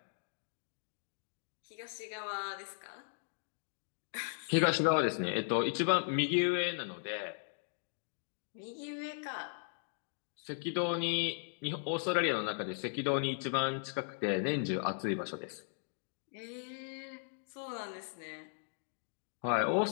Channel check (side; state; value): right; silent; digital silence